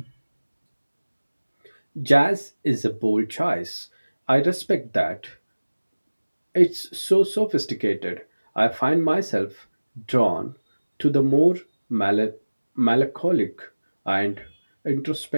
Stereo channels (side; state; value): both; inverted; correlation -1.00